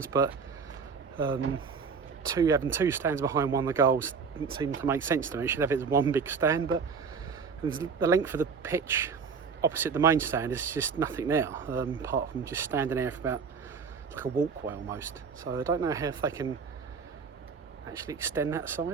but having 2 stands behind one of the goals didn't seem to make sense to me. You should have it as one big stand, but the length of the pitch opposite the main stand is just nothing there, apart from just standing there for about like a walkway almost. So I don't know how if they can actually extend that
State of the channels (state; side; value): quieter; left; 5.5 dB